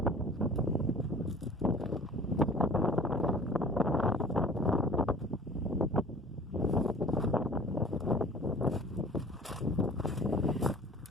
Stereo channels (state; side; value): normal; both; correlation 0.46